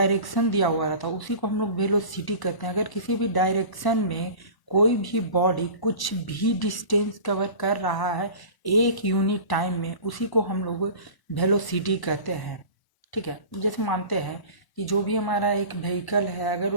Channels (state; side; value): late; right; 1.0 ms